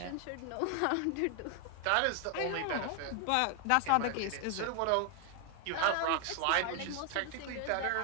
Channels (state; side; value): different; both; correlation 0.00